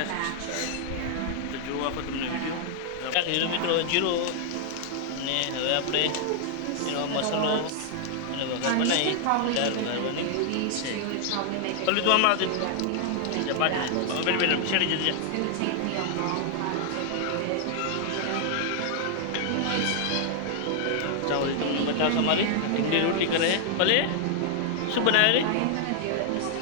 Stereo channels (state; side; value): different; both; correlation 0.00